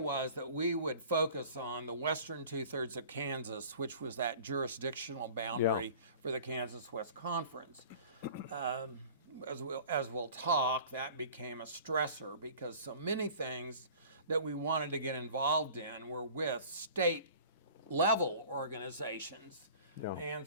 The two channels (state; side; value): inverted; both; correlation -0.45